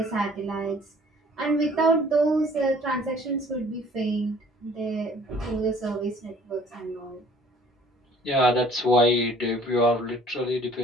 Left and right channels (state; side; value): normal; both; correlation 0.55